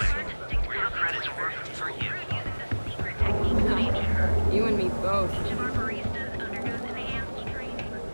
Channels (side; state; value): both; inverted; correlation -1.00